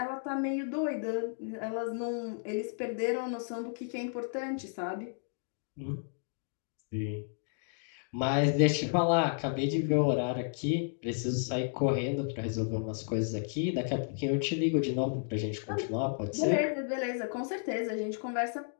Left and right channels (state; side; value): silent; right; digital silence